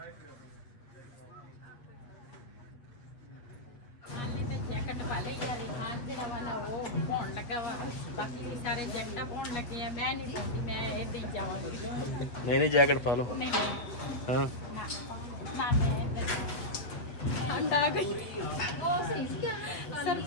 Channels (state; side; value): late; right; 8.4 ms